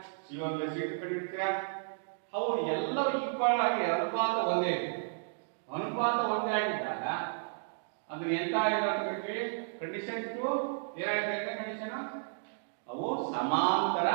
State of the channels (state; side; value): silent; left; digital silence